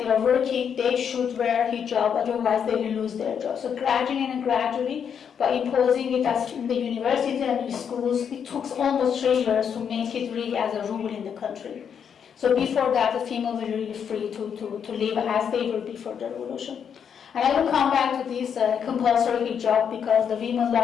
are working, they should wear hijab, otherwise they will lose their job. So gradually, by imposing it as in the university and the schools, it took almost 3 years to make it really as a rule in the country. So before that, the females were really free to live as they were before the revolution. And I will come back to this compulsory hijab, because the women's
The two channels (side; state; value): right; quieter; 7.6 dB